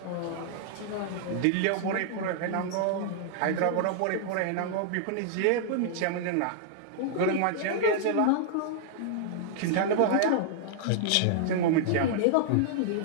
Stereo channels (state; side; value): different; both; correlation -0.01